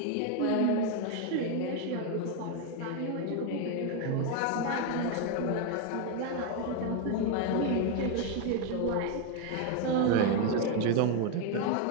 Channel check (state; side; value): different; both; correlation 0.01